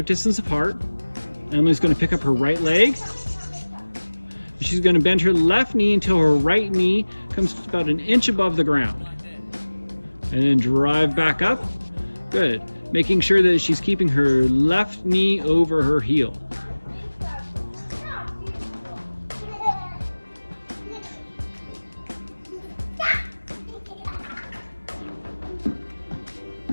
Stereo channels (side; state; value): both; inverted; correlation -1.00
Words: distance apart. Emily's going to pick up her right leg. She's going to bend her left knee until her right knee comes about an inch above the ground. And then drive back up. Good. Making sure that she's keeping her left knee over her heel.